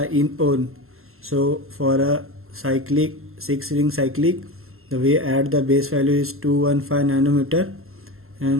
So for a cyclic 6 ring cyclic, the way add the base value is 215 nanometer,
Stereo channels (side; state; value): left; late; 0.62 ms